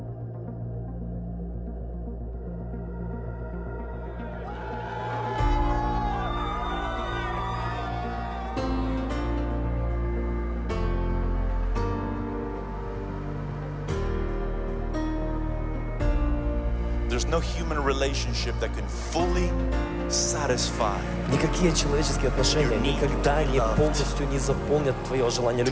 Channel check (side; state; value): both; identical; correlation 1.00